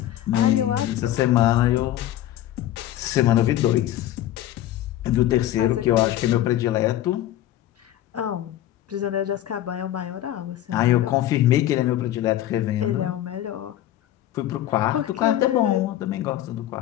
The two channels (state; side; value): quieter; right; 13.1 dB